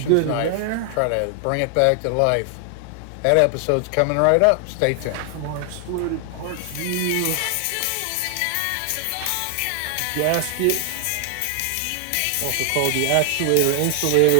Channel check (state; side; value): different; both; correlation 0.00